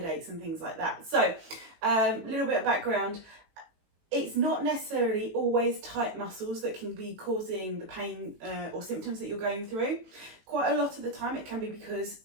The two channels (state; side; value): late; left; 18 ms